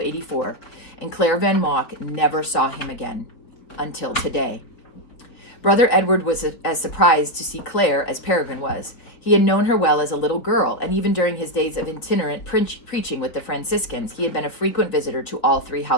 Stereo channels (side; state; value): right; late; 4.5 ms